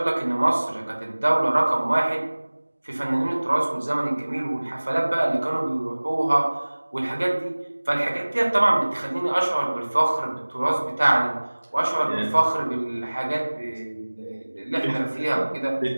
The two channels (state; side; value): inverted; both; correlation -1.00